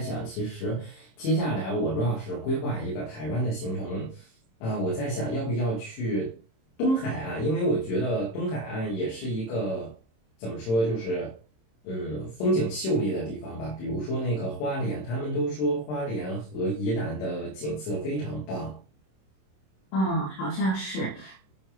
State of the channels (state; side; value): late; right; 27 ms